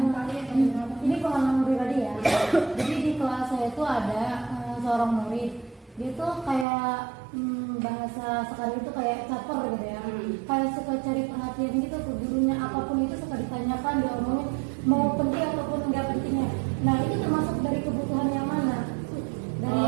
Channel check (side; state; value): left; drops out; at 6.7 s